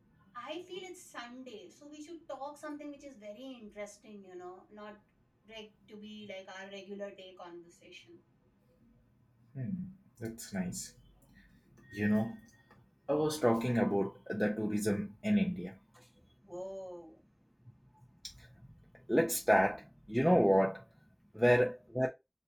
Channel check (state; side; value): identical; both; correlation 1.00